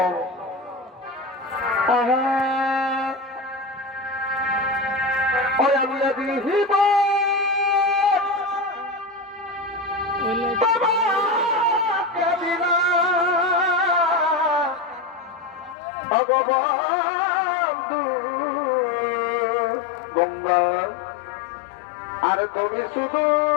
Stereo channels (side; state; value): right; drops out; at 15.8 s